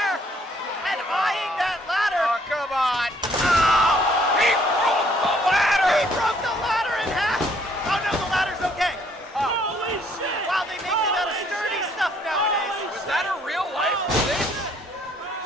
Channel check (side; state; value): both; normal; correlation 0.64